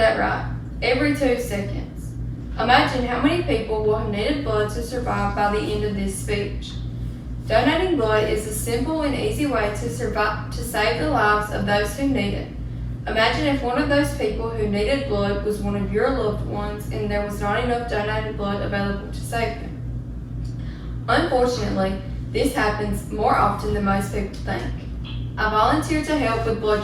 right. Every 2 seconds. Imagine how many people will have needed blood to survive by the end of this speech. Donating blood is a simple and easy way to save the lives of those who need it. Imagine if one of those people who needed blood was one of your loved ones and there was not enough donated blood available to save them. Unfortunately, this happens more often than most people think. I volunteer to help with blood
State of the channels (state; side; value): identical; both; correlation 1.00